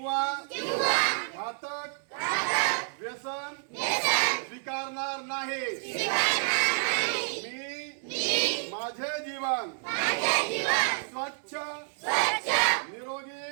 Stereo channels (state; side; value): silent; left; 58 dB below the other